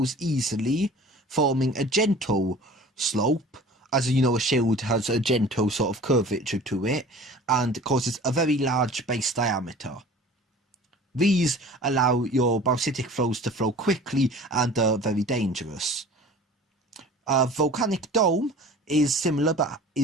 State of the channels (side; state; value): both; normal; correlation 0.43